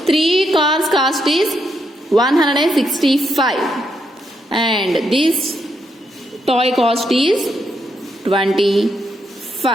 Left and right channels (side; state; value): both; normal; correlation 0.79